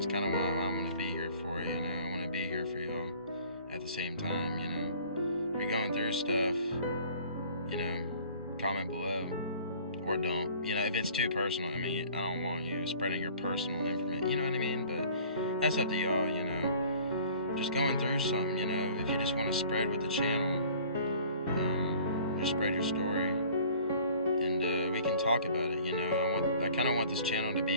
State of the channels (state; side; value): inverted; both; correlation -0.50